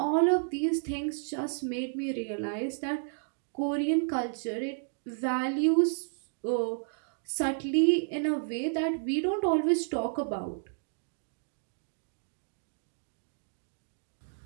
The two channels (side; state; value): left; silent; digital silence